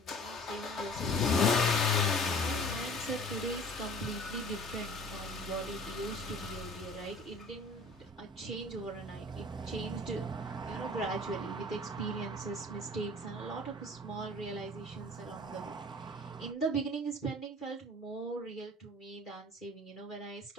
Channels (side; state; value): both; normal; correlation 0.47